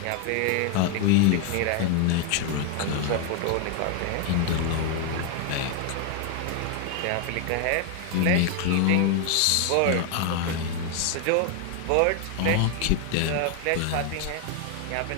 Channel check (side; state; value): both; different; correlation 0.01